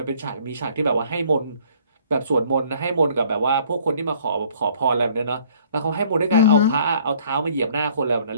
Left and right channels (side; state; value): both; inverted; correlation -0.58